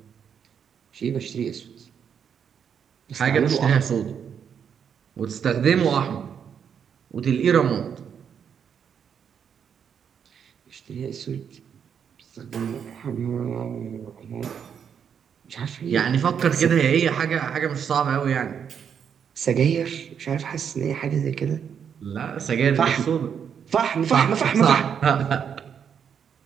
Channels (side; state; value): left; quieter; 7.7 dB